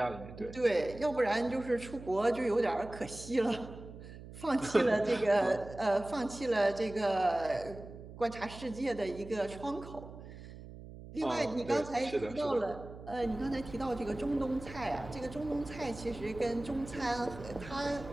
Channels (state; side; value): noise; right; hum, 14 dB below the sound